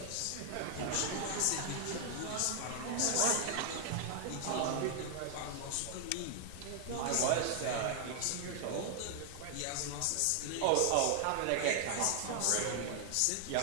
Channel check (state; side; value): different; both; correlation 0.00